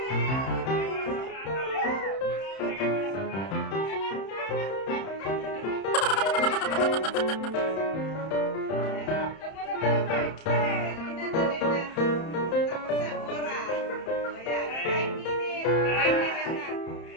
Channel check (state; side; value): late; right; 31 ms